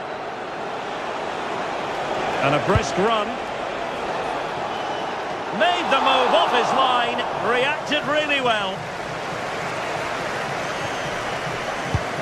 And a brisk run. Made the move off his line. Reacted really well.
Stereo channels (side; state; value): both; identical; correlation 1.00